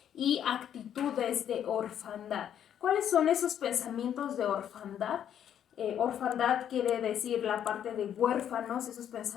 y actitudes de orfandad. ¿Cuáles son esos pensamientos de orfandad? Orfandad quiere decir la parte de huérfanos, esos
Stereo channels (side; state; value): right; quieter; 9.7 dB